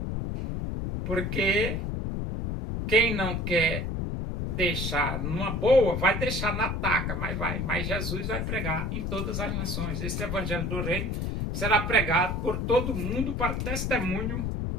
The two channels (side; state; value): left; noise; rumble, 2 dB below the sound